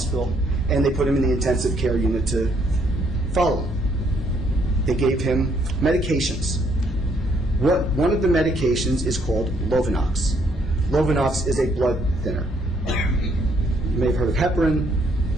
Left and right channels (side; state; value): both; normal; correlation 0.69